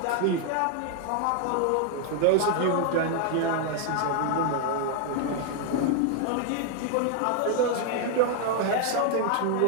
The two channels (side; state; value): both; different; correlation 0.00